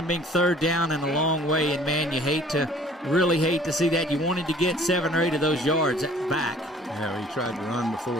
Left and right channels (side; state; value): both; normal; correlation 0.53